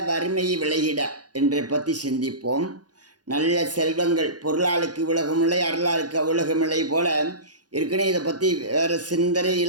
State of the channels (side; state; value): left; late; 0.69 ms